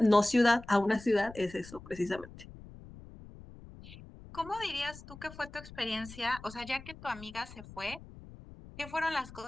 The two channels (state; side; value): noise; left; rumble, 17 dB below the sound